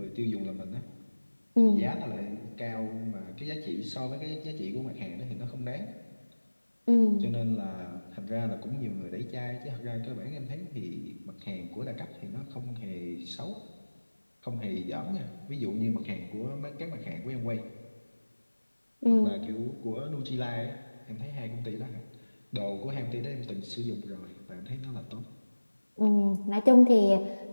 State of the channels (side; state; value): both; inverted; correlation -1.00